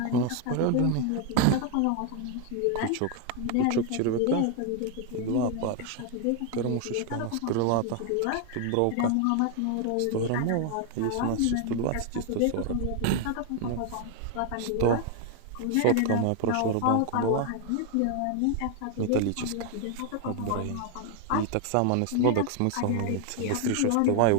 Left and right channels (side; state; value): both; different; correlation 0.00